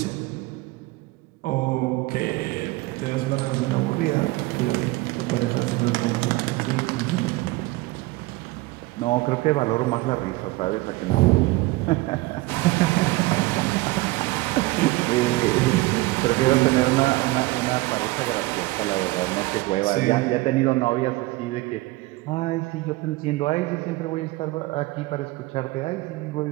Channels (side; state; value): left; quieter; 20.7 dB